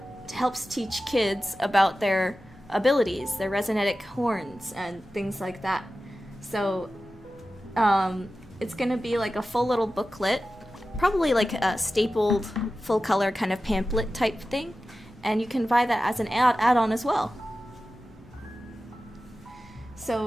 helps teach kids about their abilities, their resinetic horns, and things like that. So It's gonna be like a full little booklet, probably like a stapled full color kind of pamphlet type thing, and you can buy that as an add-on as well.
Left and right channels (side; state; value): both; normal; correlation 0.94